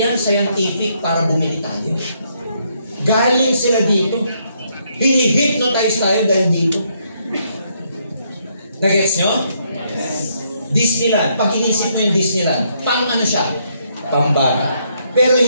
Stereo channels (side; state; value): both; inverted; correlation -0.73